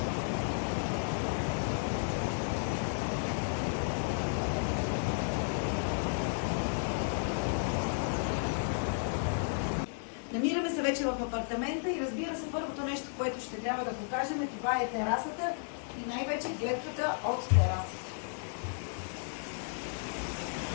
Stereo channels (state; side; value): silent; right; digital silence